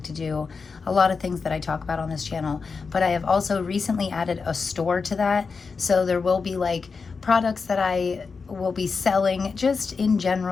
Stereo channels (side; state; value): right; quieter; 4.9 dB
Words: to do, a lot of things that I talk about on this channel. But I have also recently added a store to that, so there will be like products that I will be selling just in